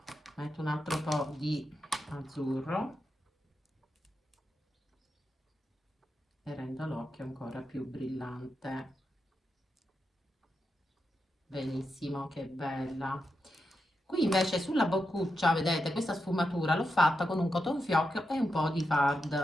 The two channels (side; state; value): both; normal; correlation 0.87